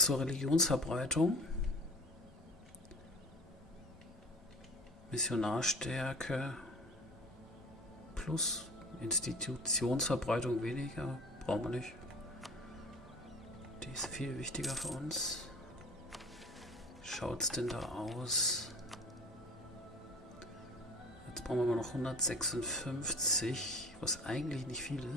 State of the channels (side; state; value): both; normal; correlation 0.41